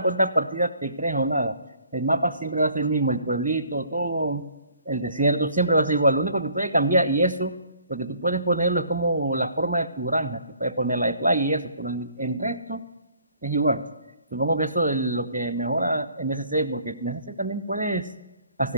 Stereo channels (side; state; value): both; inverted; correlation -0.58